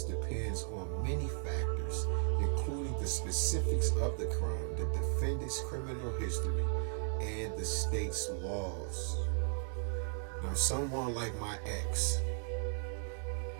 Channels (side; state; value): left; silent; 54 dB below the other